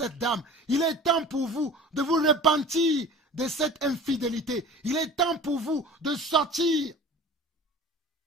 dame. Il est temps pour vous de vous repentir de cette infidélité. Il est temps pour vous de sortir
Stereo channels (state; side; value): normal; both; correlation 0.40